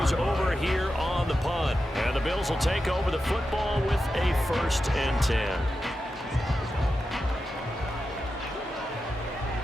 over here on the punt. And the Bills will take over the football with a 1st and 10.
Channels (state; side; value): normal; both; correlation 0.90